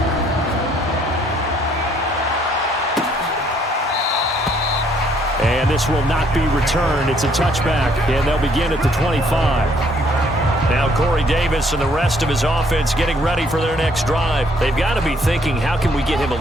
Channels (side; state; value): both; normal; correlation 0.65